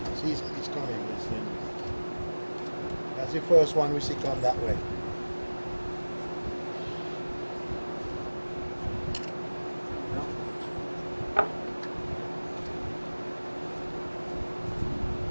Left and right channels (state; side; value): inverted; both; correlation -1.00